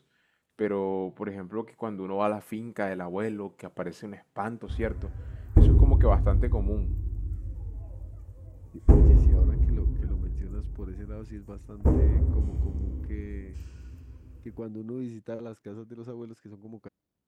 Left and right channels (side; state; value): both; identical; correlation 1.00